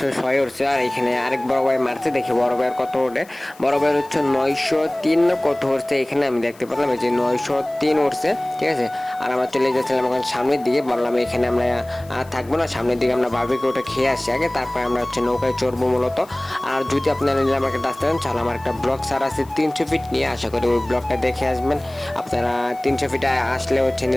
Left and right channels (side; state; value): left; noise; hiss, 25 dB below the sound